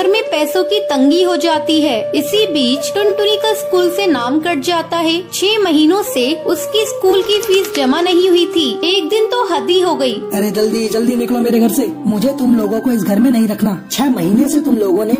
में पैसों की तंगी हो जाती है। इसी बीच टुनटुनी का स्कूल से नाम कट जाता है। 6 महीनों से उसकी स्कूल की फीस जमा नहीं हुई थी। एक दिन तो हद ही हो गई। अरे जल्दी जल्दी निकलो मेरे घर से। मुझे तुम लोगों को इस घर में नहीं रखना। 6 महीने से तुम लोगों ने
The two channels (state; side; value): identical; both; correlation 1.00